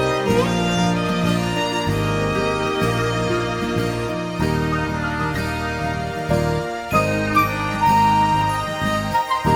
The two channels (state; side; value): identical; both; correlation 1.00